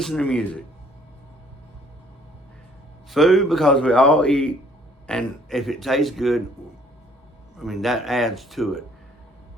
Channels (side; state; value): both; normal; correlation 0.60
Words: to music. Food because we all eat, and if it tastes good, I mean that adds to it.